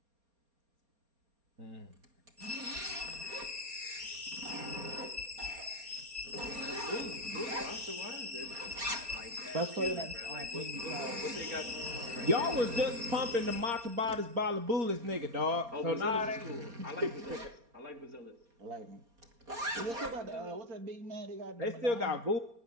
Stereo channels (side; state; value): left; late; 4.3 ms